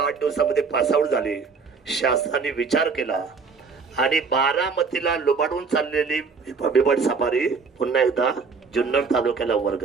दिवसामध्ये पासआउट झाले. शासनाने विचार केला आणि बारामतीला लुबाडून चाललेली बिबट सफारी पुन्हा एकदा जुन्नर तालुक्याला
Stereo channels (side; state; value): left; quieter; 5.0 dB